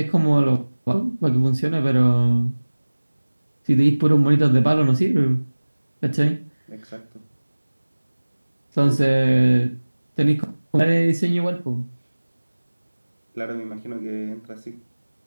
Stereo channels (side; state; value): both; inverted; correlation -1.00